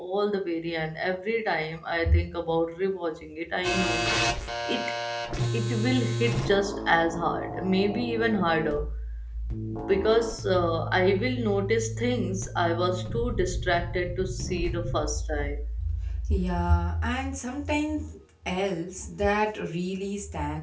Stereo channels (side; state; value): both; identical; correlation 1.00